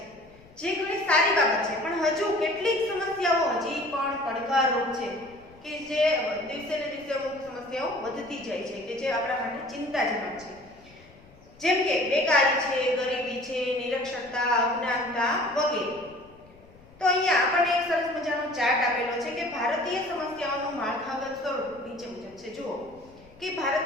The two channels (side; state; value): left; noise; rumble, 25 dB below the sound